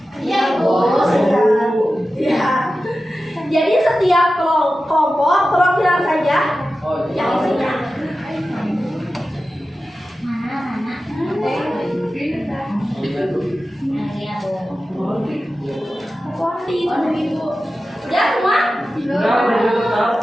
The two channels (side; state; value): both; normal; correlation 0.93